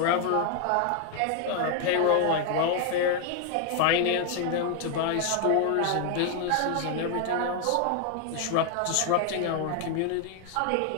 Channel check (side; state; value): both; different; correlation 0.00